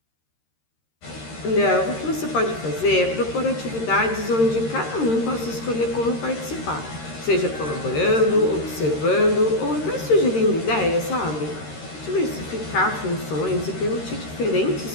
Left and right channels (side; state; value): right; late; 13 ms